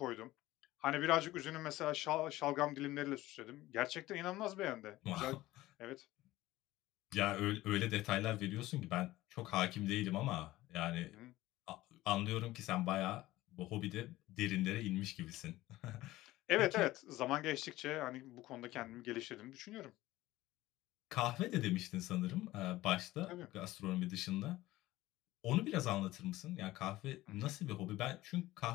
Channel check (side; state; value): right; quieter; 17.1 dB